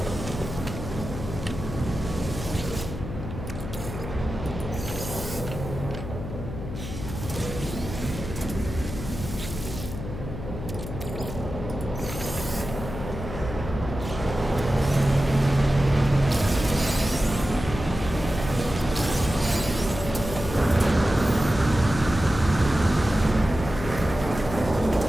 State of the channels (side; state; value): left; noise; hum, 8 dB below the sound